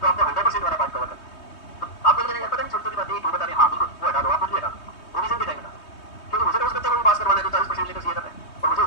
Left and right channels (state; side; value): late; right; 3.2 ms